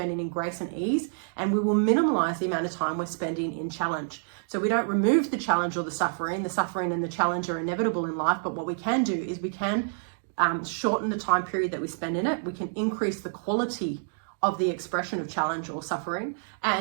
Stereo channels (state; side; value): silent; left; digital silence